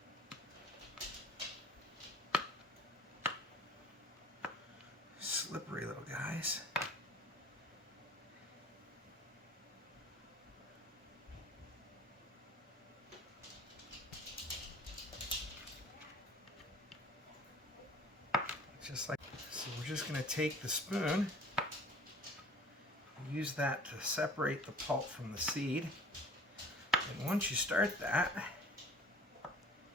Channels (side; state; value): both; normal; correlation 0.47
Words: Slippery little guys. Just like so, we're just going to take the spoon, use that to separate the pulp from the seed. And once you start that,